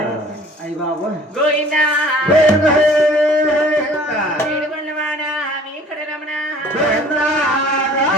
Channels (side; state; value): both; normal; correlation 0.50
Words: అయ్యి బాబు గోయిందా ఏడుకొండవాడా ఇక్కడ రమణ